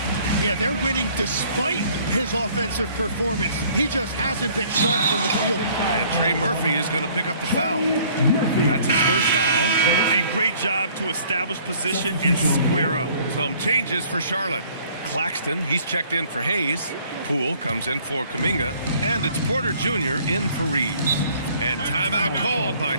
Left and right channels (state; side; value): inverted; both; correlation -0.57